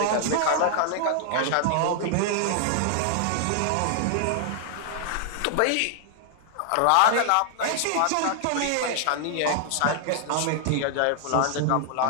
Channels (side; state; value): both; different; correlation 0.00